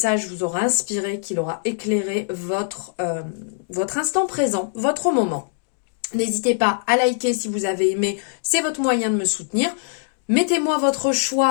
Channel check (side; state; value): right; silent; digital silence